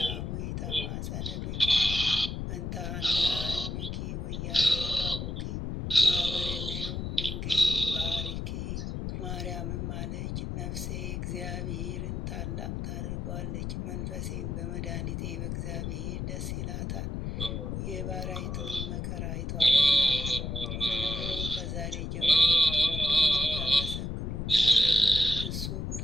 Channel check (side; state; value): left; noise; rumble, 4 dB below the sound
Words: ተማጸነቢኪ እንታና እምኪ ወያቄ ባቡኪ ማህበርነዮም ድንግል ባሪኪ። ማርያምም አለች፣ ነፍሴ እግዚአብሔርን ታላቅ ታደርጓለች፣ መንፈሴም በመድኃኒቴ በእግዚአብሔር ደስ ይላታል፣ የባሪያይቱን መከራ አይቷልና። እነሆ ከዛሬ ጀምሮ ያመሰግኑኛል፣ እሱ